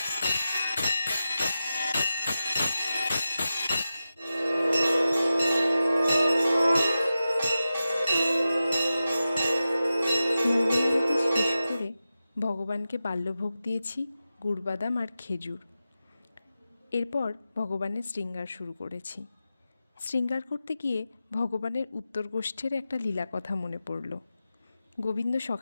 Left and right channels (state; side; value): inverted; both; correlation -0.92